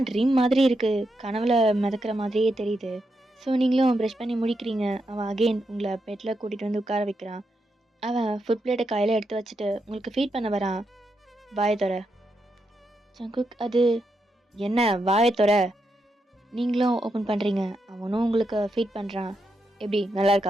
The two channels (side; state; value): both; normal; correlation 0.83